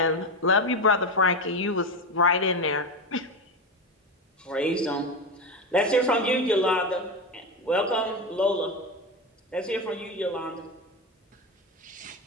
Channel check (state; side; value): normal; both; correlation 0.17